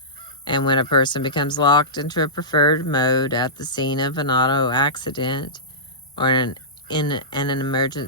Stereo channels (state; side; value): normal; both; correlation -0.18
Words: and when a person becomes locked into a preferred mode at the scene of an auto accident or in an